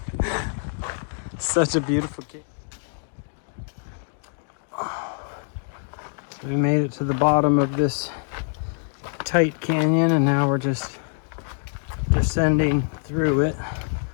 Such a beautiful cave. So we made it to the bottom of this tight canyon, and now we're just descending through it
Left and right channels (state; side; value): silent; right; 62 dB below the other